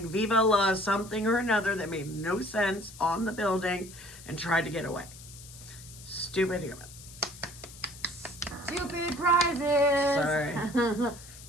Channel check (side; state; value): left; noise; hiss, 17 dB below the sound